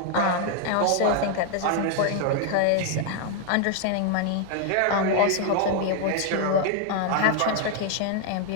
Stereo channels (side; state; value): both; different; correlation 0.00